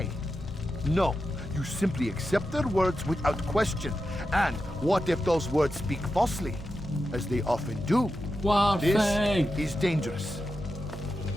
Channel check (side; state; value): both; normal; correlation 0.90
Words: No, you simply accept their words without question. And what if those words speak falsely? As they often do. This is dangerous.